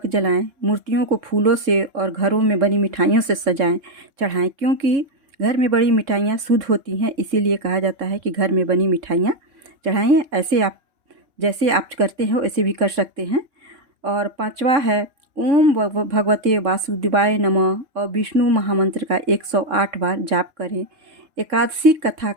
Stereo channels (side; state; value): left; late; 3.6 ms